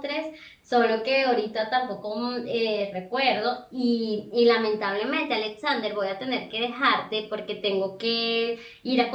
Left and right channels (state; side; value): identical; both; correlation 1.00